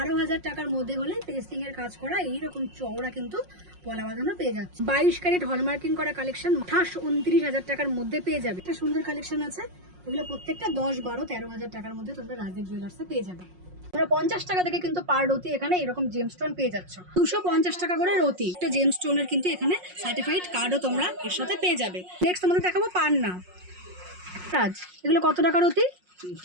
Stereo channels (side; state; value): left; late; 5.5 ms